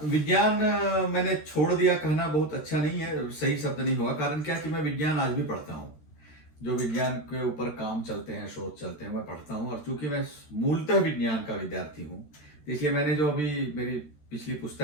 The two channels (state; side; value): late; right; 13 ms